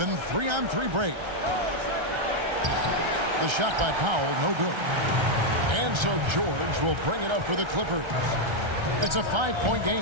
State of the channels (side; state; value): left; late; 1.3 ms